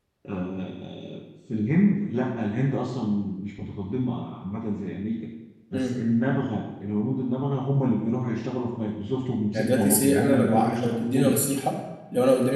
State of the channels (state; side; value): identical; both; correlation 1.00